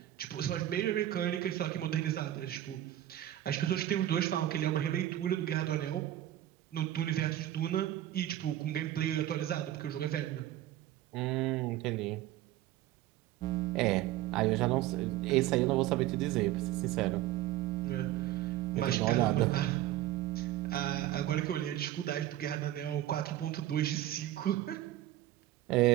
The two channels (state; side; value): quieter; left; 13.7 dB